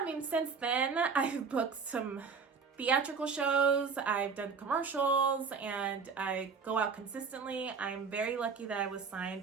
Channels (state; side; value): quieter; left; 5.3 dB